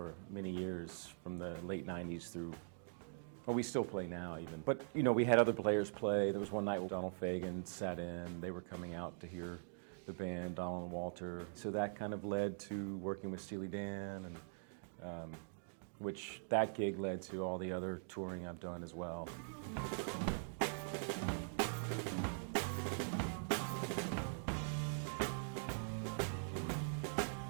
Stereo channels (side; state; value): left; silent; digital silence